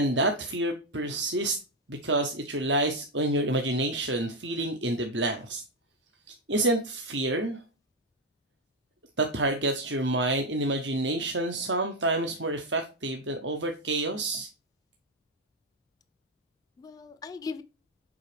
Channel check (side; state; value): both; normal; correlation 0.05